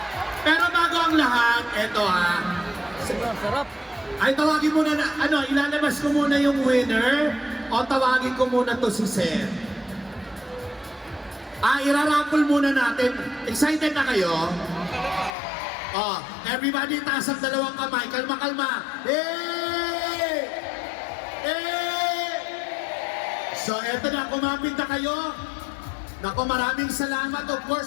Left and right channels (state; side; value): drops out; right; at 15.4 s